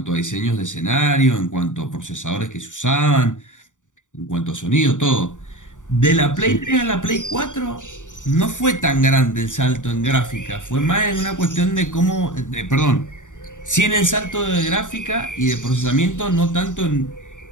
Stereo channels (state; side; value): late; right; 0.86 ms